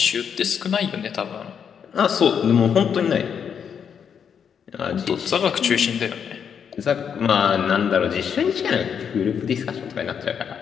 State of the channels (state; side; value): quieter; right; 7.5 dB